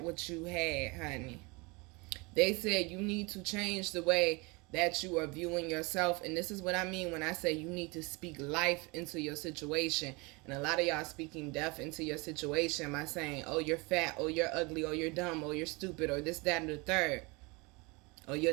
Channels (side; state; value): left; quieter; 27.1 dB